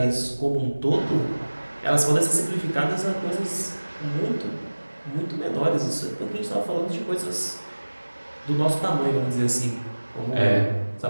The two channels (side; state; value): both; inverted; correlation -1.00